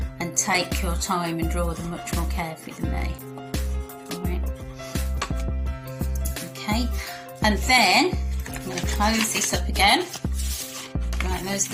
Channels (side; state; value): both; identical; correlation 1.00